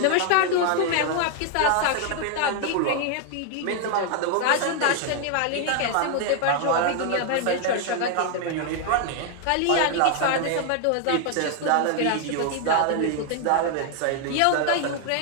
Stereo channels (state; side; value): different; both; correlation 0.00